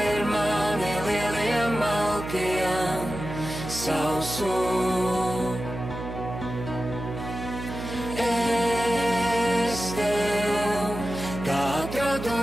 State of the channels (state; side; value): noise; right; hum, 8 dB below the sound